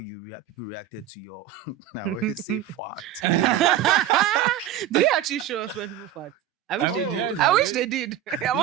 people reacted to your, I always say fart. Did they actually show us when people fart? I wish they did. I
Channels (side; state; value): left; quieter; 11.2 dB